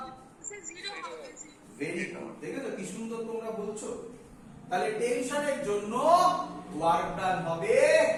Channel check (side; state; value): both; identical; correlation 1.00